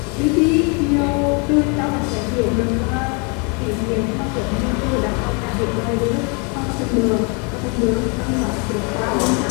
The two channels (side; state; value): right; quieter; 34.3 dB